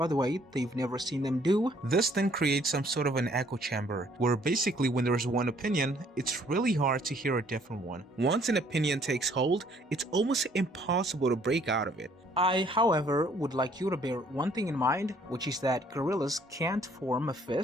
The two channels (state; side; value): normal; both; correlation 0.62